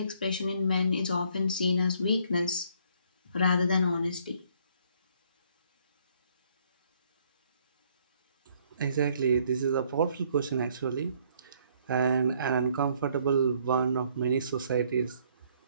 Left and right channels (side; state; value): both; inverted; correlation -0.65